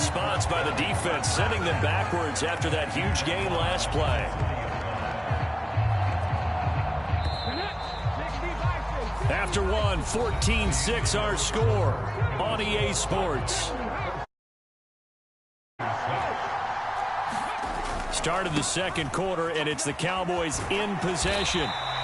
by the defense, sending them backwards after that huge gain last play. After 1, 14-6 our score on EA Sports. Start of the second quarter, and it's the Cowboys in possession.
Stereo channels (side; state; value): both; identical; correlation 1.00